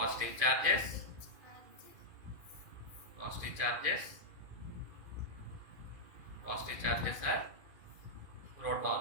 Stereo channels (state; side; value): late; left; 2.4 ms